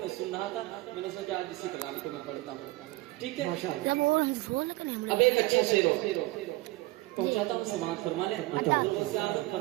मैं सुन रहा था, मैंने सोचा आज इसी कलाम को मैं पढ़ता हूँ, ठीक है। अब एक अच्छा शेर हो पहुंचाता हूँ, समाअत फरमा लें। हुजूर गौसे आजम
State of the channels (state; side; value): quieter; left; 20.1 dB